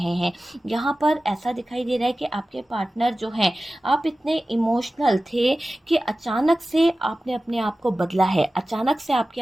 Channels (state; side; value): normal; both; correlation 0.96